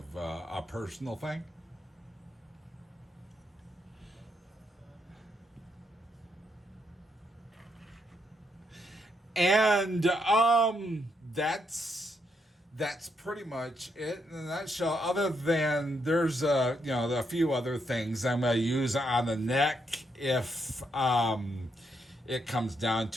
a personal thing. And that's pretty much it in a nutshell. Other than there's a few other things I'm gonna use on the neck if it comes down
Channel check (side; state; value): both; normal; correlation 0.78